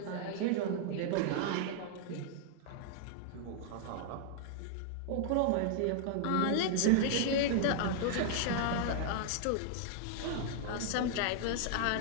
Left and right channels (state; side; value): different; both; correlation -0.01